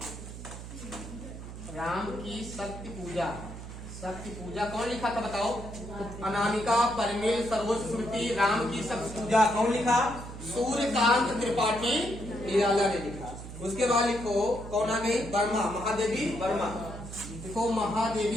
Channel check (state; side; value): noise; right; hum, 11 dB below the sound